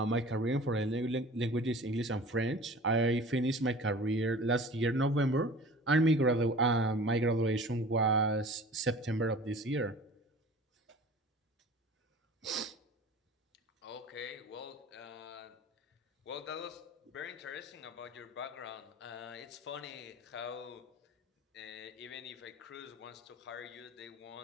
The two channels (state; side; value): normal; both; correlation 0.42